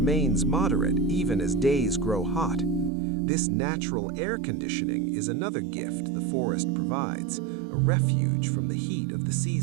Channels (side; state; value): left; drops out; at 2.9 s